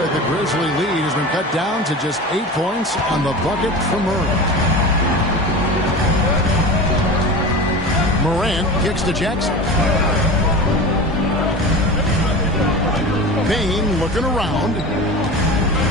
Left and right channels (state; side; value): normal; both; correlation 0.31